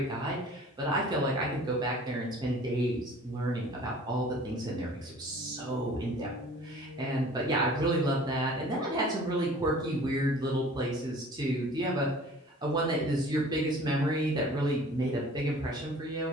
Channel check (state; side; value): normal; both; correlation 0.48